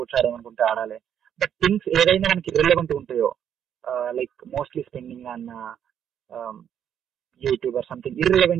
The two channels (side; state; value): left; quieter; 9.1 dB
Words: ఆడాలనుకుంటే ఆడాలి. బట్ థింగ్స్ ఏదైనా మనకి రిలవెంట్ ఉంటాయో, like mostly spending on YouTube or something